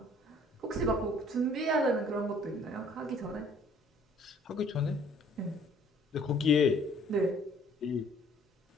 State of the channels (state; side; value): normal; both; correlation 0.57